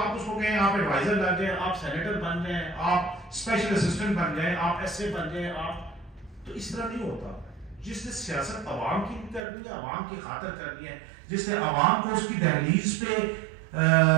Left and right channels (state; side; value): drops out; left; at 9.5 s